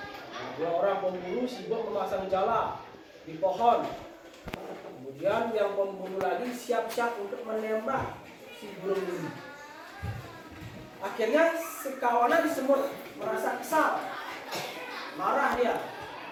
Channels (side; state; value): both; identical; correlation 1.00